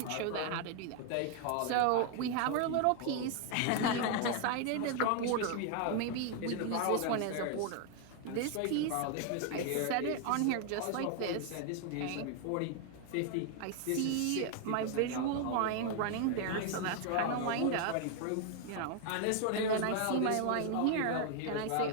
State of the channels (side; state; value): both; different; correlation 0.00